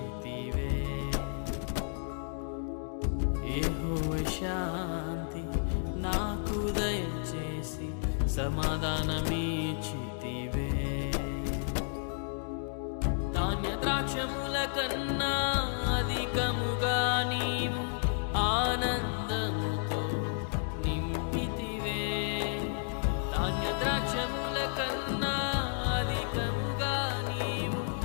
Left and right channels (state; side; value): silent; right; digital silence